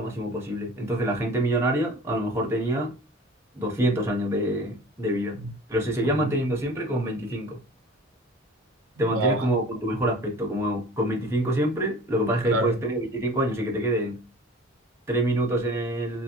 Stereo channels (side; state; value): both; normal; correlation 0.42